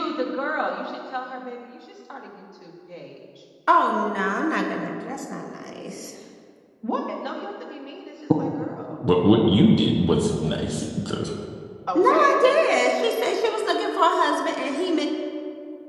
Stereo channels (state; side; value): identical; both; correlation 1.00